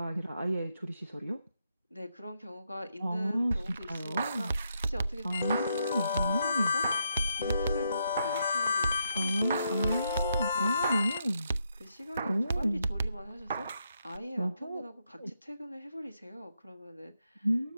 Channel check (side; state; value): both; inverted; correlation -0.80